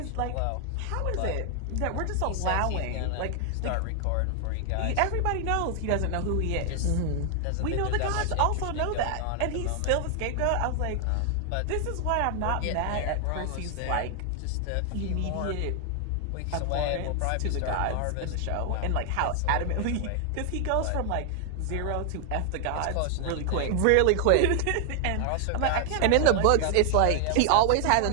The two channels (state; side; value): different; both; correlation 0.00